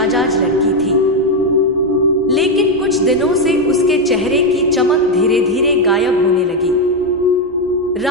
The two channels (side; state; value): both; normal; correlation 0.05